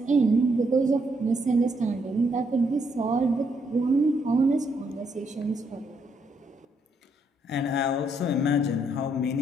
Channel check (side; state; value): both; normal; correlation 0.75